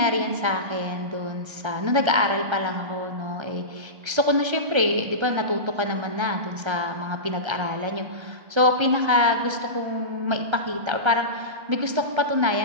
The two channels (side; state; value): left; late; 1.3 ms